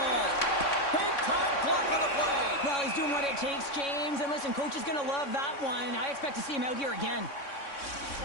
Big time block on the play. Well, he's doing what it takes, James. And listen, coach is going to love that one. I expect to see him out here again.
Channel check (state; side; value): late; right; 3.6 ms